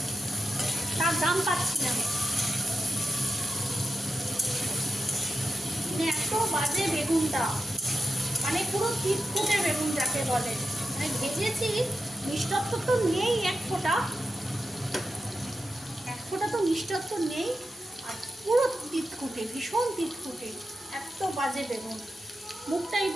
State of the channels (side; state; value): both; normal; correlation 0.89